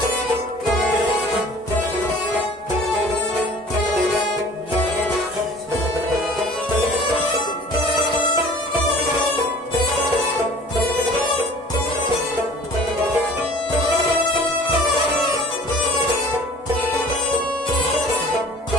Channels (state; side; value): normal; both; correlation 0.47